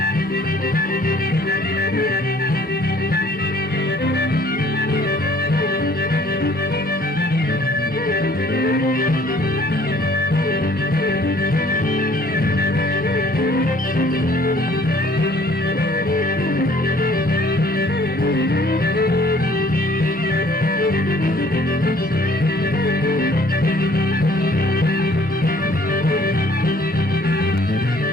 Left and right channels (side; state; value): both; normal; correlation 0.57